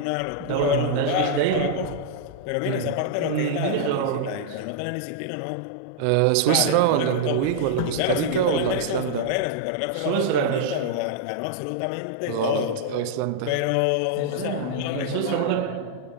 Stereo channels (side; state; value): both; different; correlation -0.01